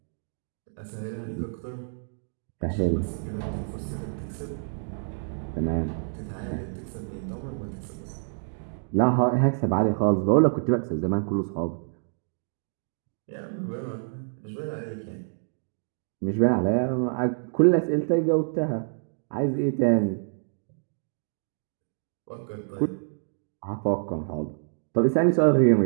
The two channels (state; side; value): silent; left; digital silence